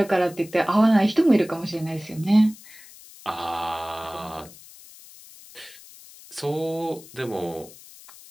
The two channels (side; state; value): left; noise; hiss, 20 dB below the sound